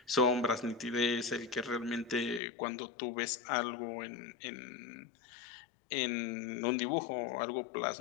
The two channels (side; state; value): right; drops out; at 2.4 s